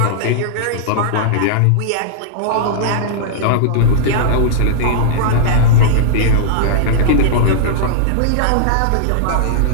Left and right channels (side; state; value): both; different; correlation -0.02